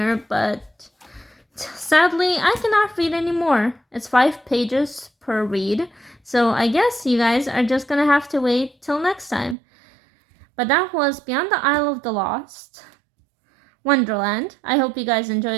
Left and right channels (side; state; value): left; drops out; at 9.6 s